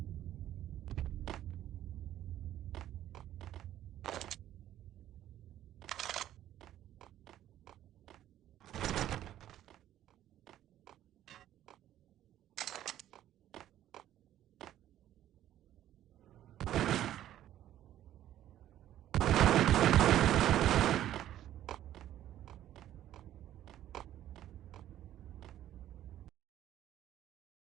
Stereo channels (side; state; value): left; quieter; 12.4 dB